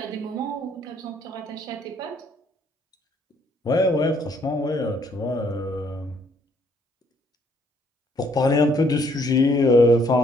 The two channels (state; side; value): normal; both; correlation 0.66